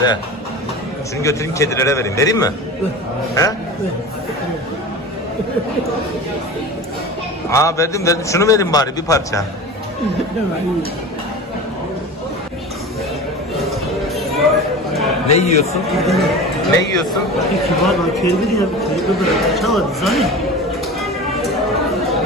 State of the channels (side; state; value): both; normal; correlation 0.33